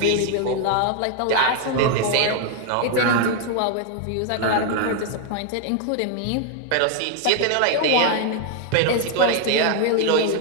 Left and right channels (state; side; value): different; both; correlation 0.00